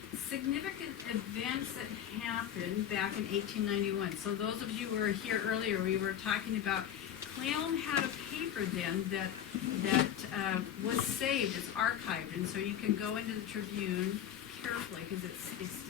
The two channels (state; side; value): quieter; right; 10.2 dB